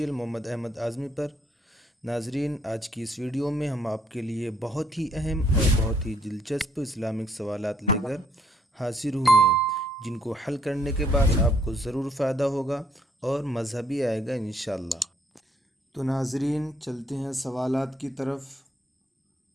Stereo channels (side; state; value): both; normal; correlation 0.67